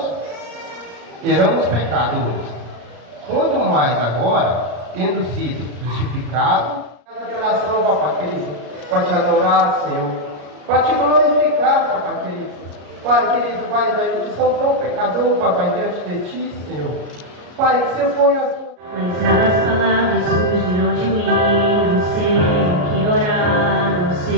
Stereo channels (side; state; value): left; late; 34 ms